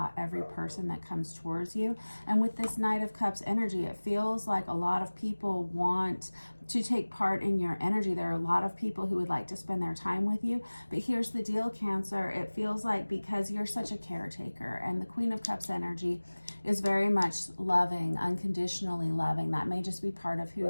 every person that comes towards you. And with this Knight of Cups energy, it feels like a lot of people want to take part in your energy. There are a lot of people who would like to spend their time with you. But here's the deal, Cancer. It feels like because you're such a caretaker, and the Queen of Cups energy is very much loving, unconditionally loving. That may just be part of who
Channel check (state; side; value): inverted; both; correlation -1.00